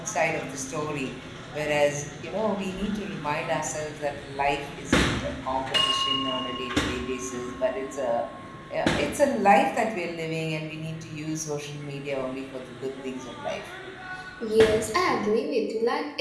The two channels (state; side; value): identical; both; correlation 1.00